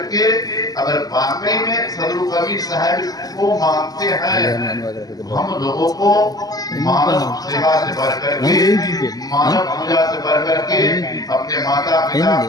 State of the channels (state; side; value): late; right; 0.18 ms